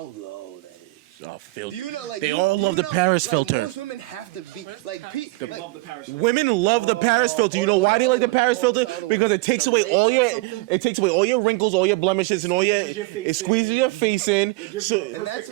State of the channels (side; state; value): left; quieter; 23.2 dB